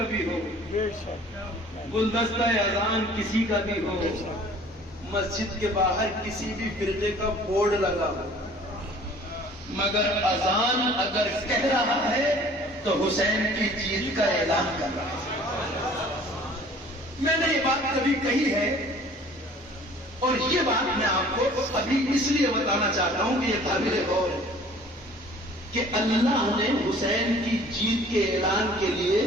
بھی ہو، گلدستہ اذان کسی کا بھی ہو، مسجد کے باہر کسی بھی فرقے کا بورڈ لگا ہو، مگر اذان اگر کہہ رہا ہے تو حسین کی جیت کا اعلان کر رہا ہے۔ میں نے یہ بات کبھی کہی ہے اور یہ بات میں آپ کو ابھی اس لیے بتانا چاہتا ہوں کہ یہ قابل غور ہے کہ اللہ نے حسین کی جیت کے اعلان کے لیے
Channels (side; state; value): both; normal; correlation 0.51